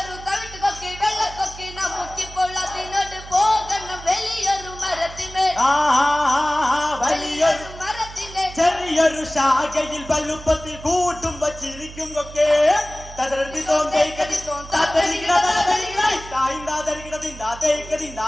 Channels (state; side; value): noise; right; hum, 15 dB below the sound